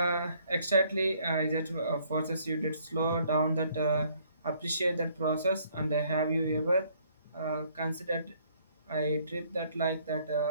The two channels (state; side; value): inverted; both; correlation -0.64